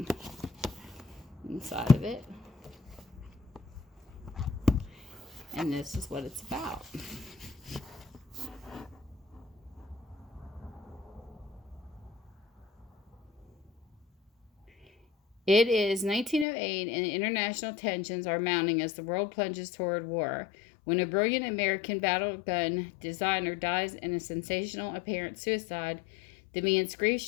inside of it. And this is what it's about. It is 1908, and international tensions are mounting as the world plunges toward war. When a brilliant American battle gun designer dies in a sensational apparent suicide, the man's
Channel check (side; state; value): right; drops out; at 16.4 s